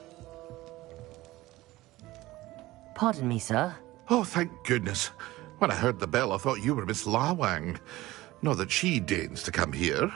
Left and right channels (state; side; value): quieter; left; 18.0 dB